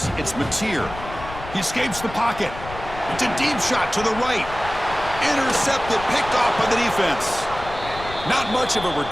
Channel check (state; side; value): noise; left; rumble, 13 dB below the sound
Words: It's Mateer. He escapes the pocket. It's a deep shot to the right. Intercepted, picked off by the defense. Not much of a